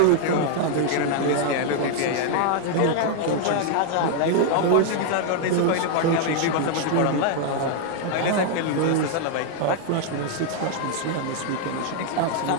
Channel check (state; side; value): different; both; correlation 0.00